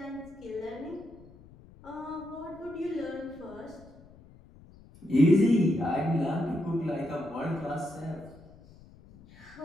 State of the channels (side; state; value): left; noise; rumble, 22 dB below the sound